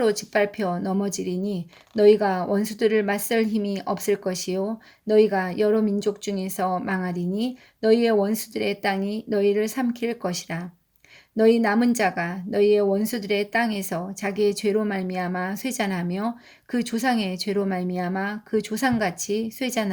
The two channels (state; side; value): identical; both; correlation 1.00